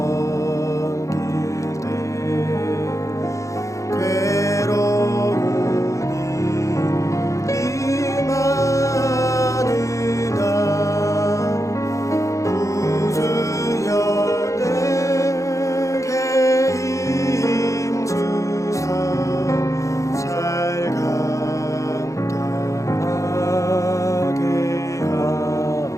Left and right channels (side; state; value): right; late; 0.15 ms